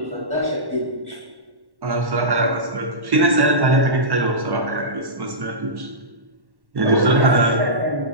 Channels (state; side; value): late; left; 1.1 ms